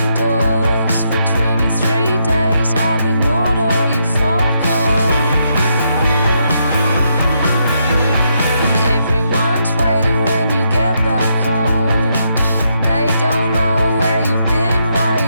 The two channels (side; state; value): both; inverted; correlation -0.79